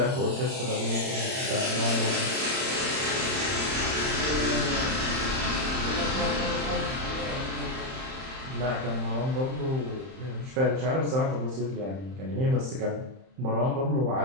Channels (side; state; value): left; late; 31 ms